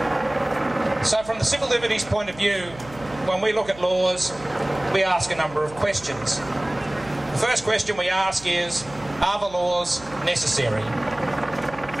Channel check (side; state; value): right; noise; hum, 19 dB below the sound